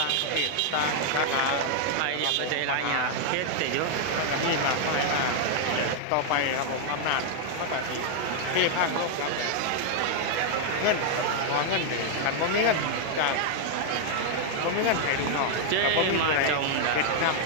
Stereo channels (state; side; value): different; both; correlation 0.00